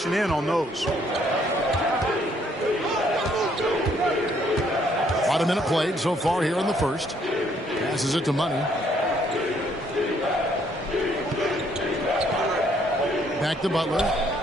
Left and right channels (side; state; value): both; normal; correlation 0.67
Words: in on those. About a minute played so far here in the first. Passes it to Money. Back to Butler.